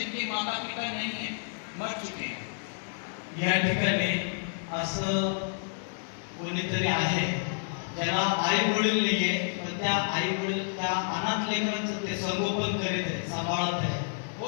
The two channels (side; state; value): right; silent; digital silence